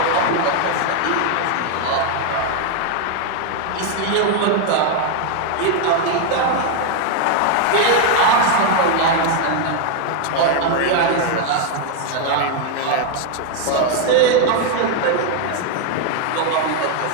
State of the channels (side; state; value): both; different; correlation 0.00